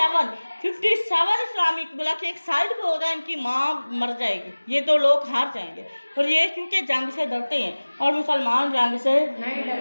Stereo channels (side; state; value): both; inverted; correlation -1.00